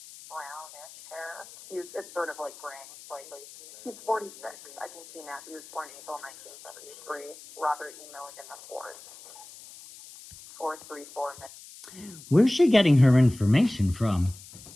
brownish hair. It's sort of like graying slightly. He's 46. I can see now. He was born April 1973. Robert E. Milligan IV. 434. Where's she getting her information from?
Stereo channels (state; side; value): noise; left; hiss, 18 dB below the sound